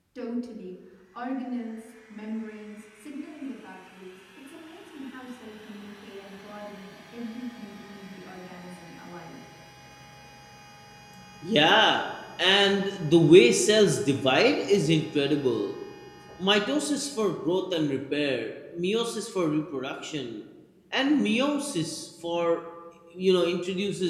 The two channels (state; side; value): identical; both; correlation 1.00